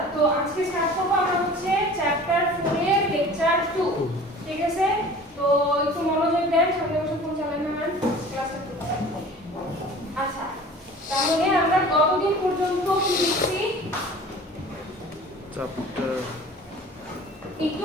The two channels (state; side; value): normal; both; correlation 0.43